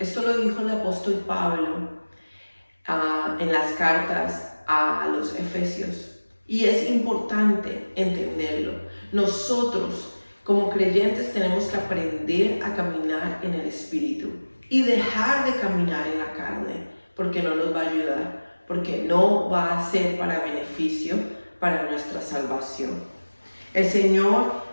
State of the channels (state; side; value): inverted; both; correlation -1.00